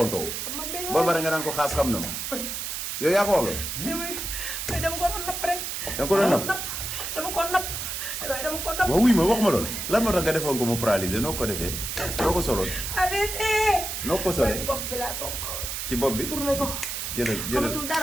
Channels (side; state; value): right; noise; hiss, 4 dB below the sound